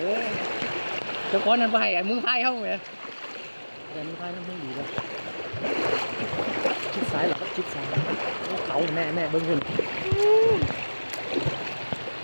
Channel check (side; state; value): both; inverted; correlation -1.00